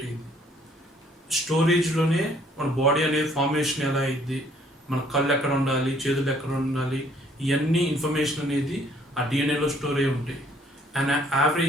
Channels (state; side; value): normal; both; correlation 0.62